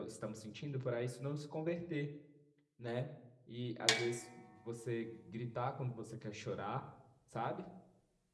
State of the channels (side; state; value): both; identical; correlation 1.00